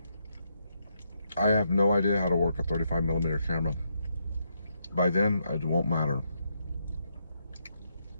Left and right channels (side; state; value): both; inverted; correlation -0.79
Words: I have no idea how to work a 35mm camera. By then, it won't matter.